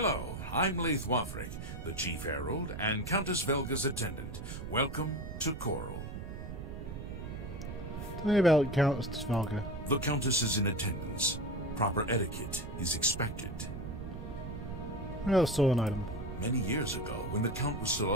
I'm Leith Wavrik, the Chief Herald and Countess Velga's attendant. Welcome to Coral. Tell me about Countess Velga. The Countess is in attendance. Proper etiquette is expected. Oh, stolen item. Many years ago, when the Count was still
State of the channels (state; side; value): noise; right; rumble, 8 dB below the sound